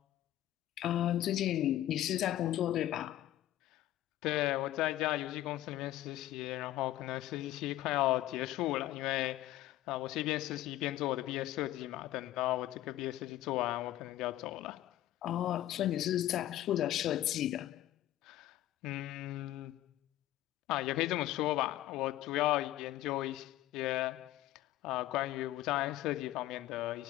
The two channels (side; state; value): right; quieter; 14.3 dB